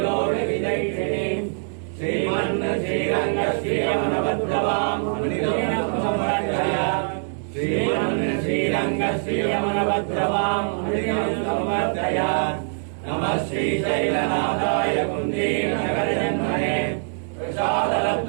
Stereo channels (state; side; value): silent; left; digital silence